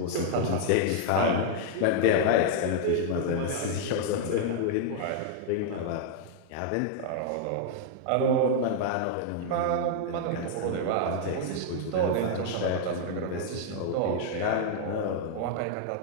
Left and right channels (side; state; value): both; different; correlation 0.00